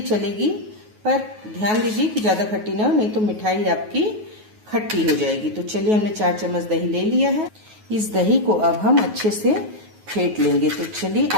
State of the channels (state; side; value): late; left; 9.4 ms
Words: चलेगी, पर ध्यान दीजिए कि ज्यादा खट्टी ना हो, नहीं तो मिठाई आपकी खट्टी हो जाएगी। तो चलिए हमने 4 चम्मच दही ले लिया है। इस दही को अब हम अच्छे से फेंट लेंगे। तो चलिए